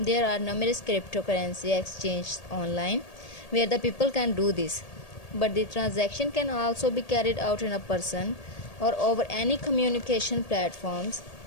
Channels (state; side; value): late; right; 1.8 ms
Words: are numerous cryptocurrency exchanges online where the people can do this, but the transaction can also be carried out in a person or over any communication platforms,